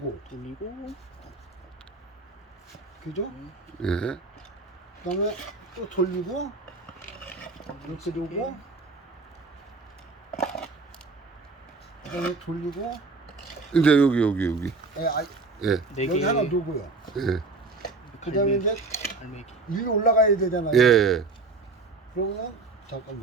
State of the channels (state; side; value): quieter; left; 3.8 dB